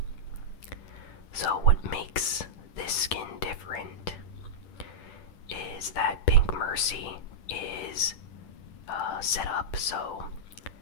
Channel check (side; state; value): right; late; 10 ms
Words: So what makes this skin different is that Pink Mercy is set up so